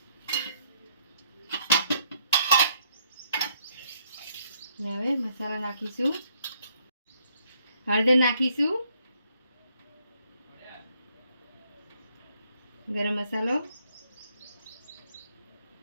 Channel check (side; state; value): both; inverted; correlation -0.70